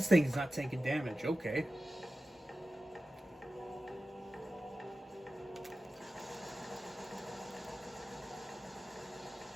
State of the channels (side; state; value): both; normal; correlation 0.94